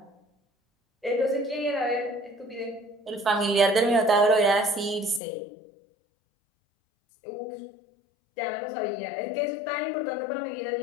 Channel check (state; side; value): drops out; right; at 5.2 s